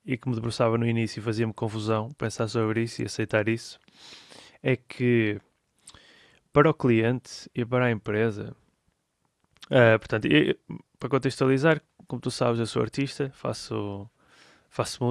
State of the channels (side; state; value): both; identical; correlation 1.00